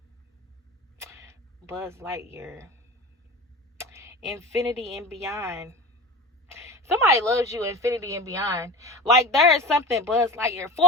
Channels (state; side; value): normal; both; correlation 0.31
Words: Buzz Lightyear. Infinity and beyond. Somebody loves you, infinity and beyond. Like, there is something Buzz Lightyear,